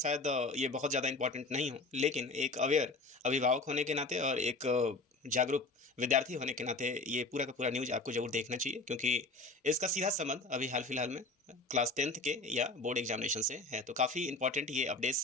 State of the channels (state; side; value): quieter; right; 3.3 dB